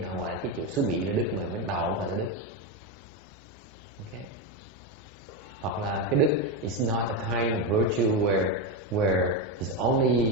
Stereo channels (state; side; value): normal; both; correlation 0.11